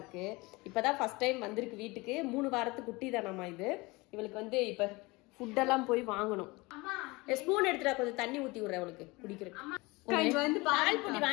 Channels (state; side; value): quieter; right; 23.8 dB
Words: இப்பதான் ஃபர்ஸ்ட் டைம் வந்திருக்கு வீட்டுக்கு. 3 வாரத்து குட்டி தானாமா இது. இவளுக்கு வந்து இப்ப ஃபுட்டெல்லாம் போய் வாங்கணும். ஸ்பூன் எடுத்துட்டா கொஞ்சம் தண்ணி ஊத்தி விடுறேன் அவளுக்கு குடிக்கிறேன். வந்து பால் புட்டி